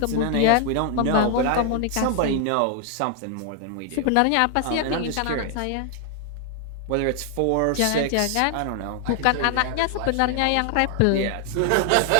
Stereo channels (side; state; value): both; different; correlation 0.00